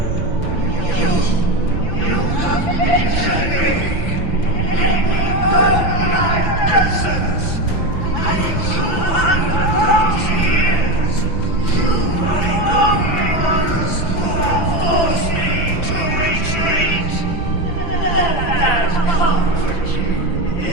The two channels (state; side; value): late; right; 5.9 ms